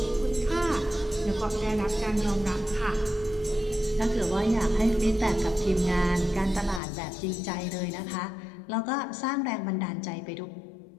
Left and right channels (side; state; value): right; drops out; at 6.8 s